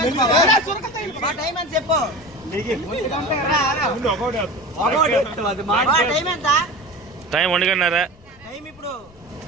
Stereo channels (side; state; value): left; noise; rumble, 26 dB below the sound